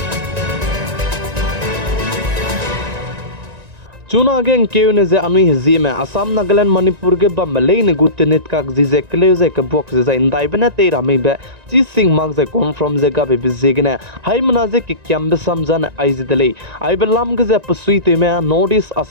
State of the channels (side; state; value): left; late; 1.9 ms